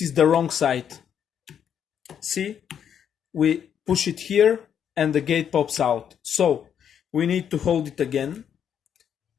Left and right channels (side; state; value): right; quieter; 8.6 dB